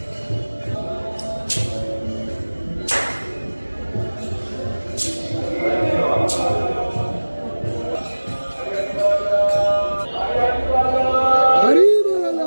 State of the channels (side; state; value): both; inverted; correlation -1.00